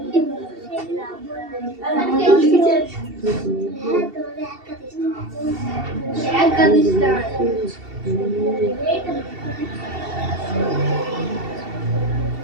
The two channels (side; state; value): left; late; 2.7 ms